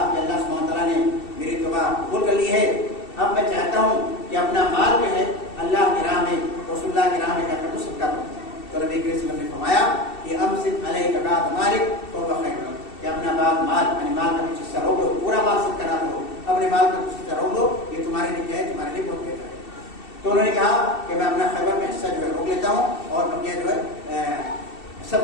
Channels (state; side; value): late; right; 2.7 ms